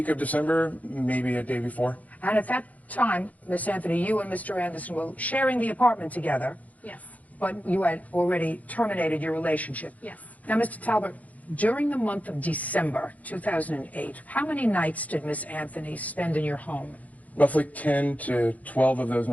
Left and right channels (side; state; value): right; late; 0.074 ms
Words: of December, maybe a day before. And at that time, Miss Anthony, you and Mr. Anderson were sharing the apartment together. Yes. But you had already terminated your relationship. Yes. Now, Mr. Talbert, during the month of December 2008, how many nights did Miss Anthony spend in your home? Roughly 10 to 12 of those